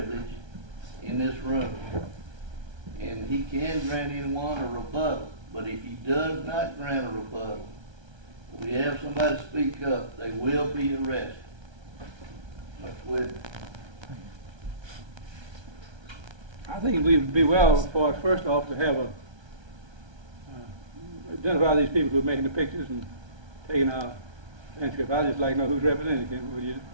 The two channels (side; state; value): left; late; 1.3 ms